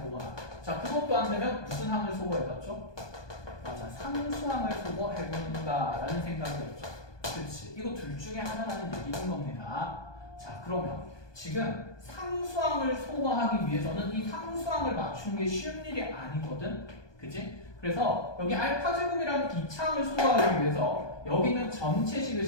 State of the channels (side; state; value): right; late; 1.2 ms